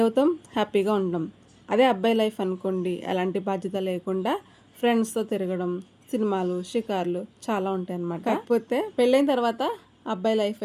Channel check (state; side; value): identical; both; correlation 1.00